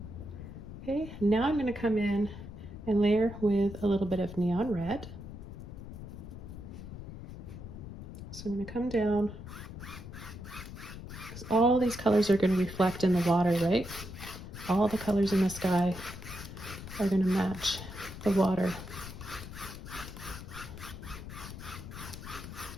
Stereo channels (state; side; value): noise; left; rumble, 11 dB below the sound